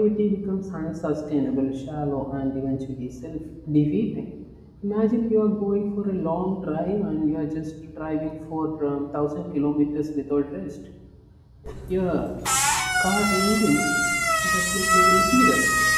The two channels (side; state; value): both; identical; correlation 1.00